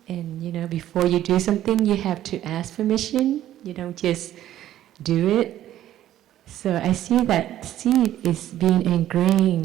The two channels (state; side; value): quieter; left; 12.6 dB